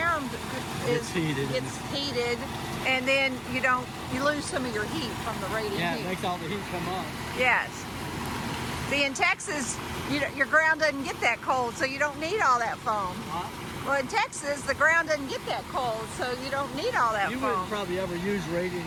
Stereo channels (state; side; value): identical; both; correlation 1.00